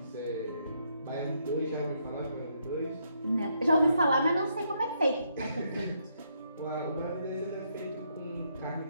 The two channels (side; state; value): both; inverted; correlation -0.75